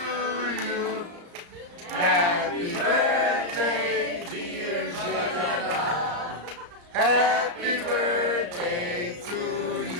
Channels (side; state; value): left; late; 35 ms